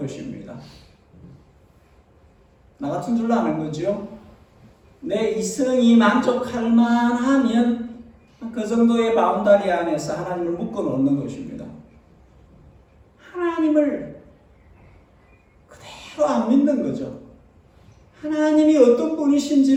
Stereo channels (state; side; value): identical; both; correlation 1.00